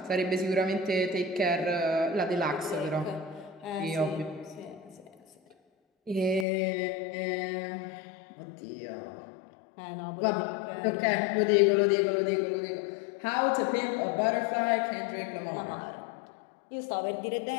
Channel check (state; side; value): drops out; right; at 6.5 s